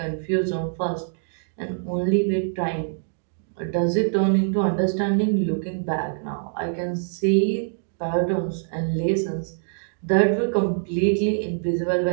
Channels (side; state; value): left; silent; digital silence